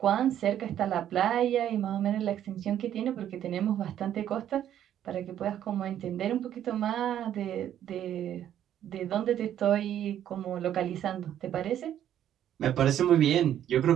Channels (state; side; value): quieter; left; 10.8 dB